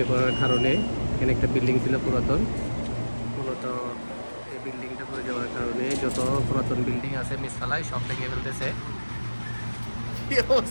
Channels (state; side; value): inverted; both; correlation -1.00